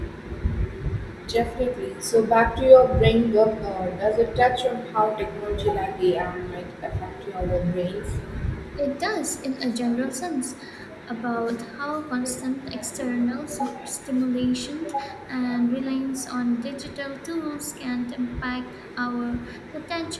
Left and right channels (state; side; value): identical; both; correlation 1.00